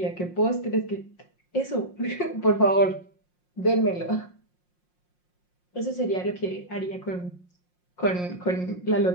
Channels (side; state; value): right; late; 5.6 ms